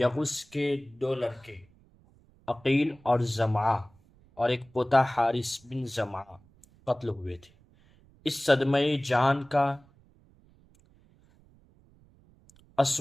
کے 2 لڑکے عقیل اور زمعہ اور ایک پوتا حارث بن زمعہ قتل ہوئے تھے۔ اس صدمہ جان کا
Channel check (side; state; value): right; noise; rumble, 29 dB below the sound